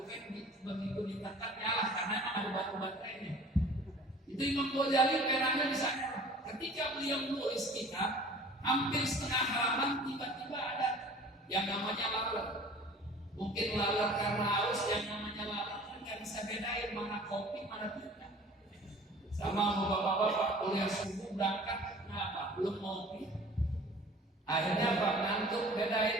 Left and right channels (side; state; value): both; normal; correlation 0.47